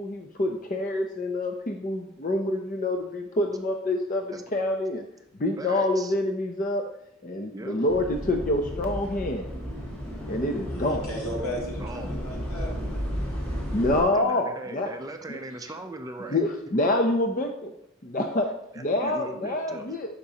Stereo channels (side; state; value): both; normal; correlation 0.36